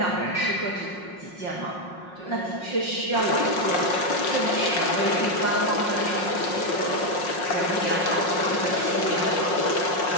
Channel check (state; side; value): late; right; 5.5 ms